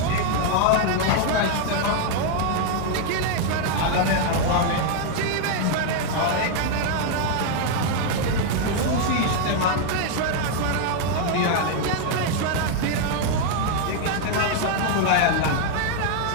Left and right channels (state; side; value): different; both; correlation 0.00